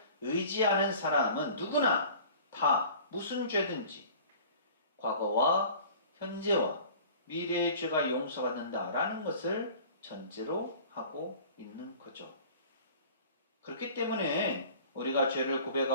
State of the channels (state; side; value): inverted; both; correlation -0.44